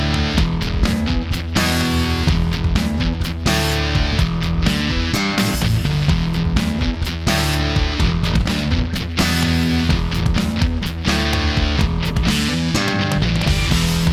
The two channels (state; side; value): identical; both; correlation 1.00